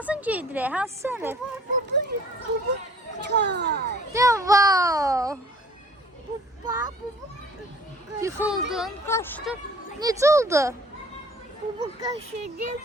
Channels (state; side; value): normal; both; correlation 0.52